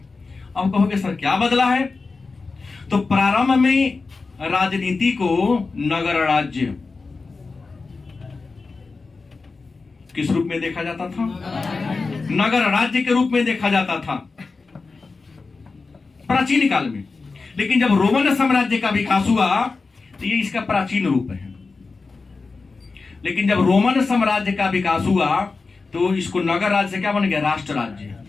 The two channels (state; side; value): quieter; right; 4.1 dB